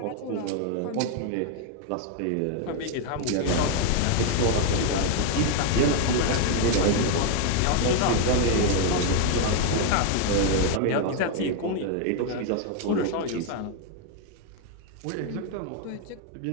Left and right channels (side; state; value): both; different; correlation 0.01